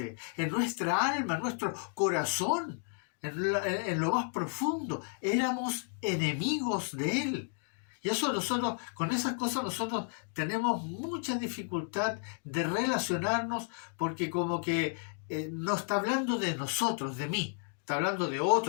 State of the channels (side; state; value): right; silent; 56 dB below the other